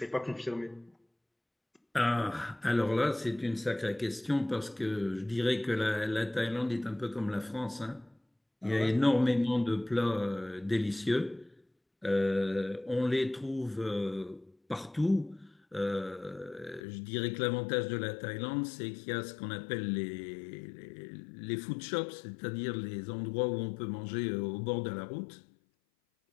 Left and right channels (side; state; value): right; drops out; at 16.8 s